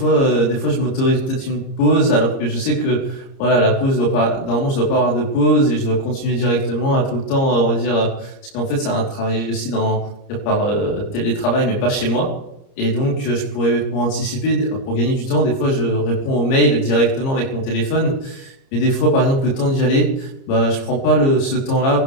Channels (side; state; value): right; late; 30 ms